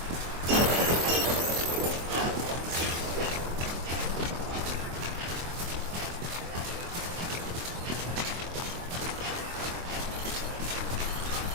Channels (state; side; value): late; left; 24 ms